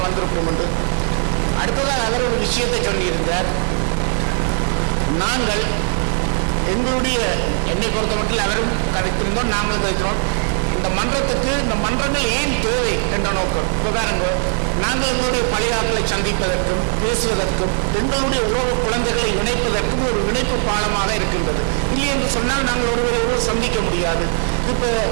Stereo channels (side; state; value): left; silent; digital silence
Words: வந்திருக்கணும் என்று. அடுத்ததாக அவர் ஒரு விஷயத்தை சொல்லியிருந்தார். நாங்கள் எங்களுடைய என்னை பொறுத்த மட்டும் அவரும் கதைத்திருந்தோம், நாங்களும் கதைக்கிறோம். இந்த மன்றத்துக்கு இந்த மன்றங்கள் ஏன் தேவை என்ற நோக்கம். இப்போ பாருங்க, நாங்கள் எங்களுடைய பழைய ஆட்களை சந்திப்பதற்கும் பேசுவதற்கும் எங்களுடைய உறவு குழந்தைகளை இணைப்பதற்கும் ஒரு இணைப்பு பாலமாக இருக்கின்றது. இல்லை என்று சொன்னால் நாங்கள் ஒருவர் சந்திக்க முடியாது. இப்போ